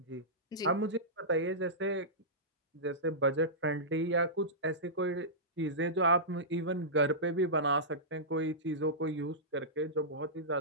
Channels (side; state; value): both; normal; correlation -0.16